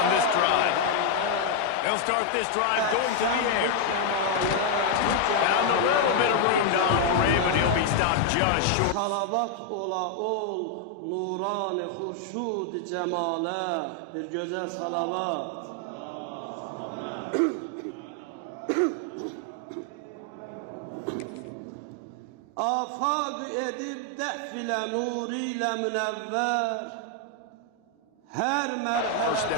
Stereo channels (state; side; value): different; both; correlation 0.00